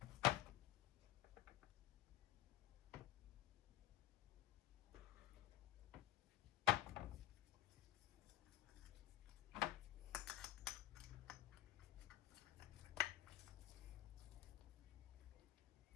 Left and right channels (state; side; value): quieter; right; 14.8 dB